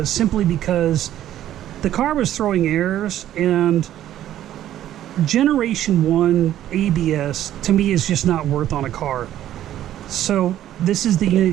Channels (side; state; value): left; quieter; 12.2 dB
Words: simply because the car was throwing errors, and Generation 1 ABS to me is just not worth on a car. So this is the